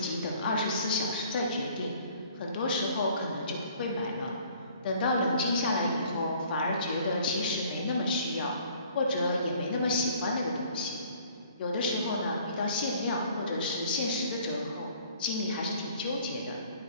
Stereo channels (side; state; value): both; inverted; correlation -0.55